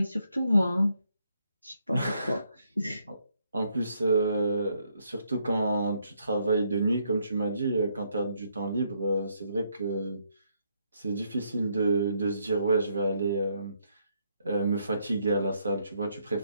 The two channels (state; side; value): inverted; both; correlation -0.74